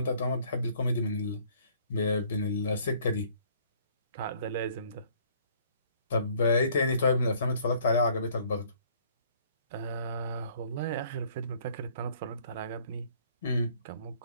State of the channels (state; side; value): inverted; both; correlation -0.60